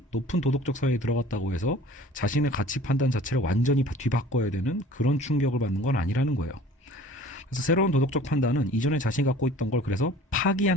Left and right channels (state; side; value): normal; both; correlation 0.47